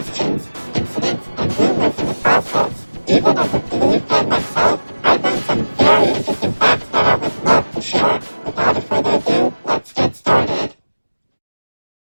incidents, and rumors in the process. Even as a Bluey fan myself, I learned some very interesting facts that I would love to share. Without further ado, let's get started.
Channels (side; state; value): both; inverted; correlation -1.00